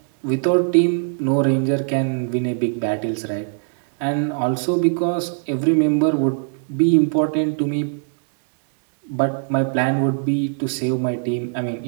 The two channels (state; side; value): silent; left; digital silence